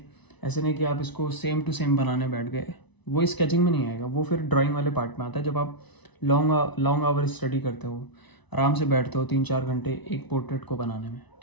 ऐसे नहीं कि आप इसको सेम टू सेम बनाने बैठ गए, वो स्केचिंग में नहीं आएगा, वो फिर ड्राइंग वाले पार्ट में आता है। जब आप लॉन्ग आवर स्टडी करते हो, आराम से बैठते हो 3-4 घंटे एक पोर्ट्रेट को बनाने में,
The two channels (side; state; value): right; late; 1.0 ms